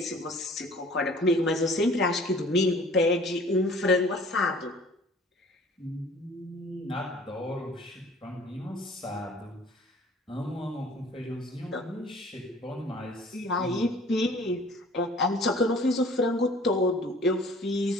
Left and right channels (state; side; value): normal; both; correlation 0.50